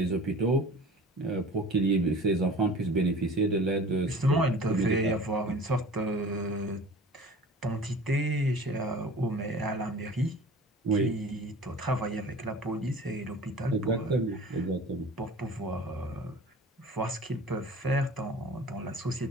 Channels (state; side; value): normal; both; correlation 0.42